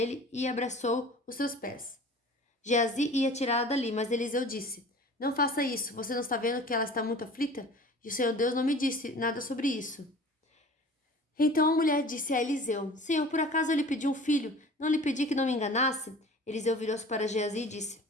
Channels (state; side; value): normal; both; correlation 0.43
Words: e abraçou os seus pés. Geazi ia tirá-la dali, mas Eliseu disse: Não faça isso. Você não está vendo que ela está muito aflita? E o Senhor Deus não me disse nada sobre isso. Então a mulher disse a Eliseu: Senhor, por acaso eu lhe pedi um filho? Não lhe pedi que não me enganasse? Eliseu virou-se para Geazi e disse: